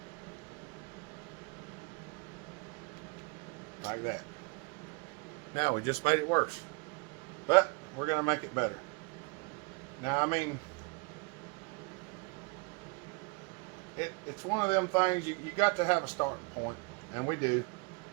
Like that. Now we just made it worse, but we're going to make it better. Now, I mean, it's one of them things you got to have a starting point, and we do.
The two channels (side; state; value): left; quieter; 30.1 dB